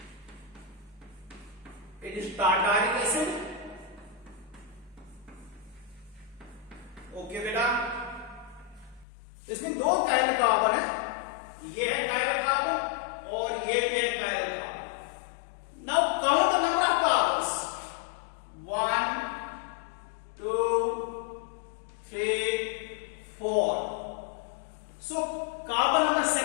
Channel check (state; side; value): drops out; right; at 9.1 s